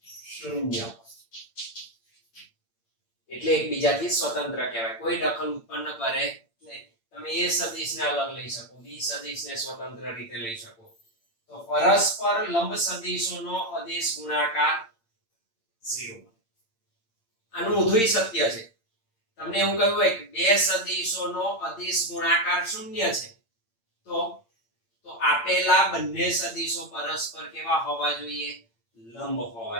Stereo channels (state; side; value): late; right; 8.8 ms